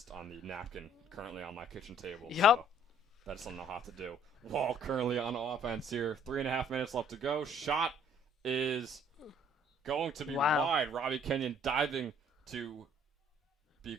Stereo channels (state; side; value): normal; both; correlation 0.59